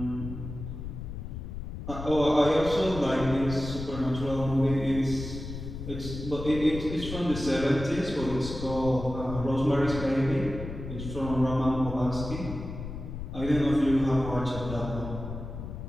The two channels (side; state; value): left; noise; rumble, 8 dB below the sound